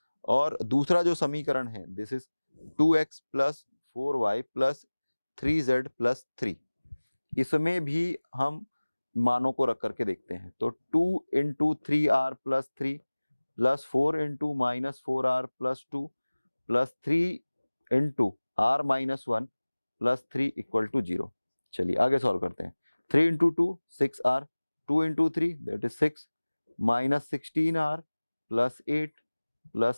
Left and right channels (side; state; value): both; inverted; correlation -1.00